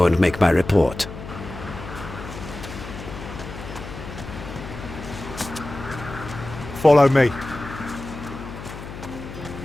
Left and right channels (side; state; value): left; noise; hum, 11 dB below the sound